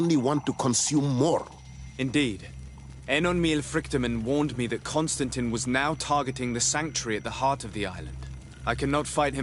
want to consume more. Indeed. Enonmil Frichtemann warned me that Constantine was now targeting the sanctuary at the heart of the island. I cannot fight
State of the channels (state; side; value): identical; both; correlation 1.00